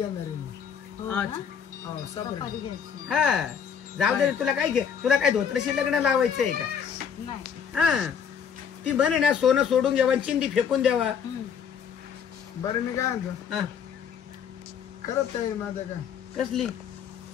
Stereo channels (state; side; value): quieter; right; 7.5 dB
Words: आहे मी. हो ना? अच्छा. हो सपरी. सफारी घ्यायची. हा जाऊ दे रे. तुला काय धोत्रशी लग्न लावायचंय का. नाही. हा ती म्हणे ना सोनं सोडून घ्यावा चिंदी फेकून द्यावा. बरं मी काय म्हणतो हा. करत आहे माझं काय कसली.